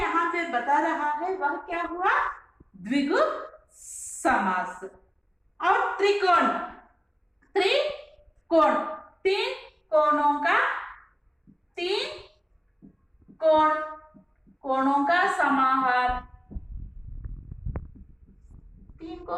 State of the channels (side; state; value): both; identical; correlation 1.00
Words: पे बता रहा है वह क्या हुआ, द्विगु समास। और त्रिकोण, त्रिकोण 3 कोणों का, 3 कोणों का समाहार। 3